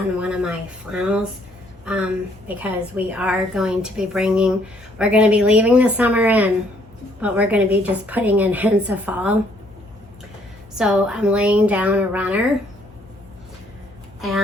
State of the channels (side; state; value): both; normal; correlation 0.65